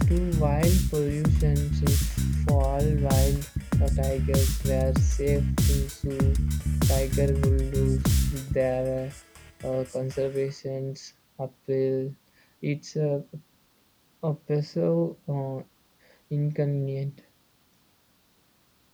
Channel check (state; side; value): identical; both; correlation 1.00